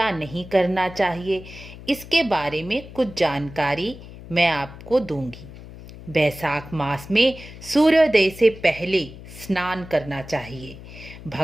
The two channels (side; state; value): left; noise; hum, 16 dB below the sound